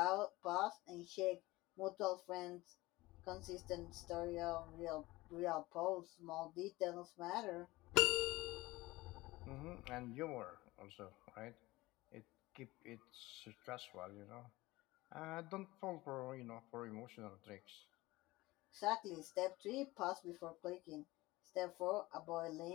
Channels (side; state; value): right; quieter; 19.7 dB